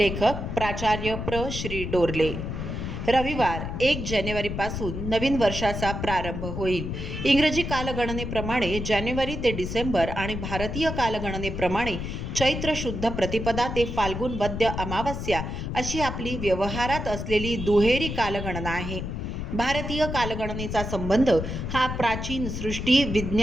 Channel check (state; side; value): noise; left; rumble, 5 dB below the sound